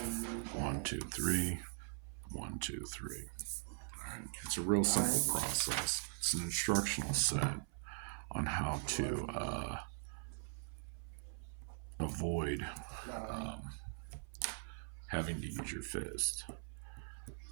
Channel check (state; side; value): silent; left; 50 dB below the other